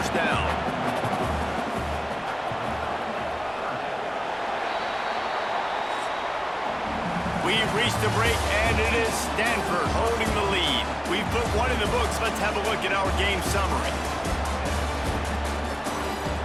down. We've reached the break, and it is Stanford holding the lead. We've put one in the books. Let's have a look at our game summary.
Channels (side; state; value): both; identical; correlation 1.00